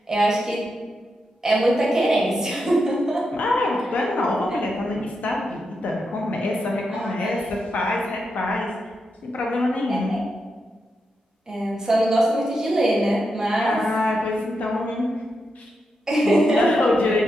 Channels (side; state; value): both; normal; correlation 0.85